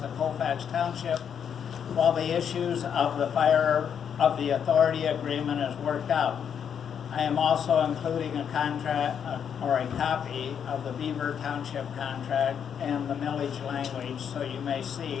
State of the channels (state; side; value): quieter; right; 7.9 dB